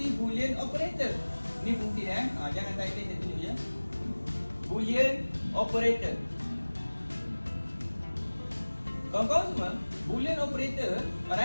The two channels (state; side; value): inverted; both; correlation -1.00